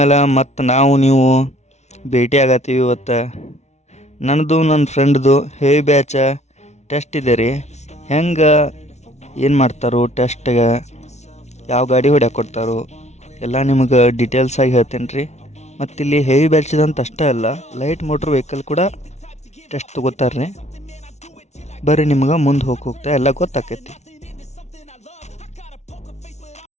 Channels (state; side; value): late; right; 0.32 ms